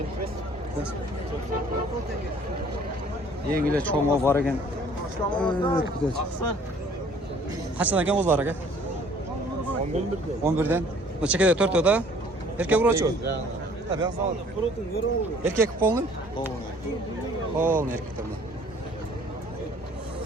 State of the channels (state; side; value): normal; both; correlation 0.56